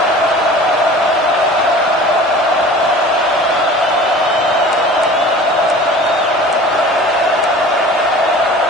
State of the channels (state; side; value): normal; both; correlation 0.42